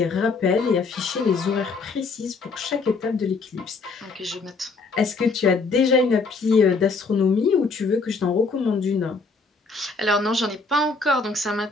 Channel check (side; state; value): right; quieter; 4.2 dB